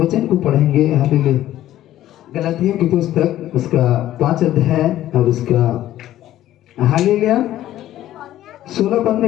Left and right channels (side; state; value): right; quieter; 13.4 dB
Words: को पढ़ेंगे हालेलुया, गलातियों की पुस्तक उसका 5 अध्याय और उसका हालेलुया 16 पद में